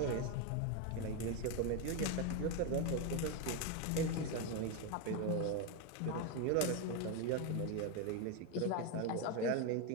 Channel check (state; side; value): different; both; correlation 0.02